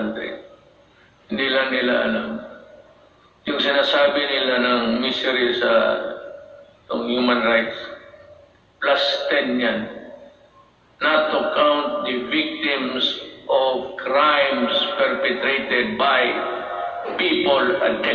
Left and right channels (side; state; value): both; identical; correlation 1.00